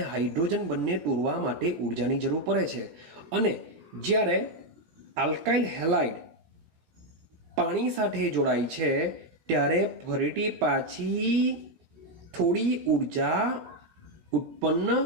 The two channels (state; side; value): late; left; 17 ms